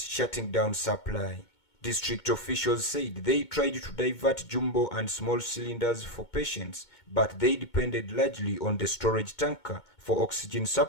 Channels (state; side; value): late; right; 2.2 ms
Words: down supply. District officials said they tried to divert jumbo and small cylinders for patients, but they depended largely on the storage tanker for oxygen